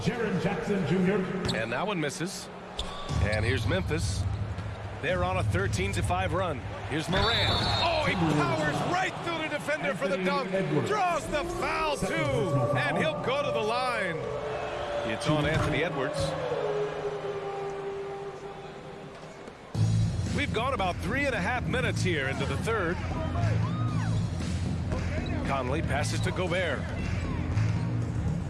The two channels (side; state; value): both; identical; correlation 1.00